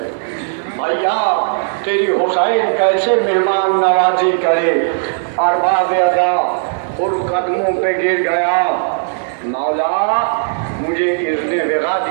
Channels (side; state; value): left; silent; digital silence